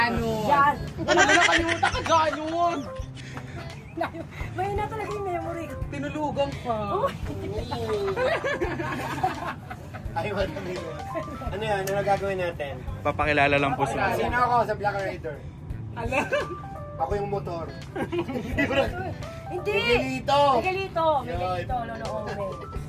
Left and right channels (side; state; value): both; identical; correlation 1.00